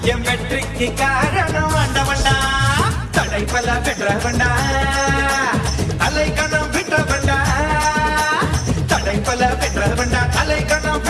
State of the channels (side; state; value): both; identical; correlation 1.00